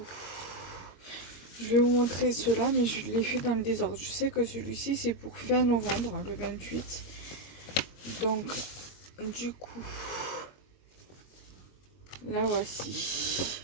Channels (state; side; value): late; right; 21 ms